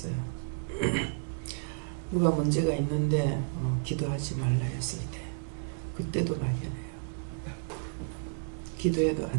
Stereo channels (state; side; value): silent; left; digital silence